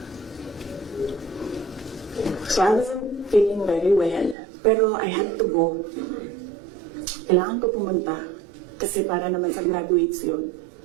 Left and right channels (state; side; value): drops out; left; at 4.4 s